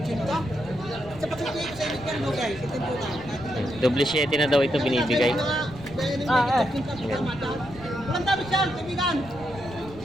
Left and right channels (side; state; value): right; noise; rumble, 17 dB below the sound